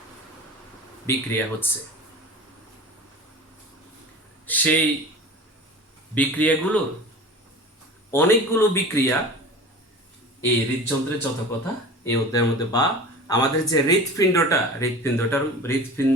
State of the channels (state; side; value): normal; both; correlation 0.36